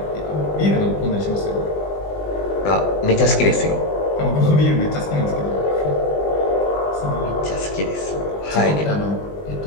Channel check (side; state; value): right; late; 20 ms